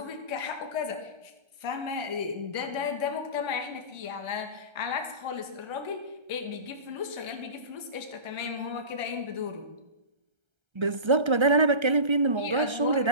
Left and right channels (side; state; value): left; late; 1.3 ms